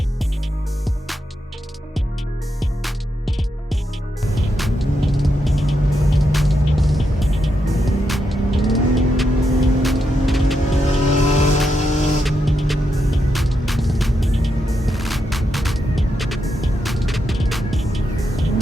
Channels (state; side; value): normal; both; correlation 0.83